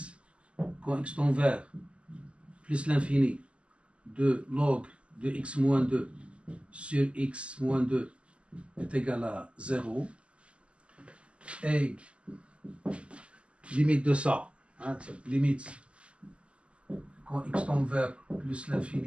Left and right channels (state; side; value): late; left; 0.056 ms